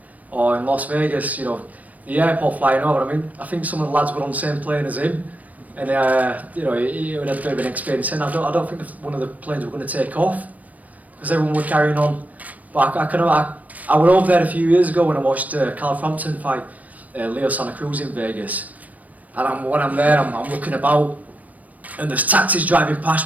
or in Las Vegas? You know, the airport flying over. I mean, I think some of the lads were on the same plane as him, and you know, he had a bit of an experience. And I don't think one of the planes were going to take off because everyone were carrying on. But I went over there a few years ago when I watched Carl Frampton fight Leo Santa Cruz in Vegas, and when I'm there, I'm looking about, and there's taxis driving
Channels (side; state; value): left; late; 0.073 ms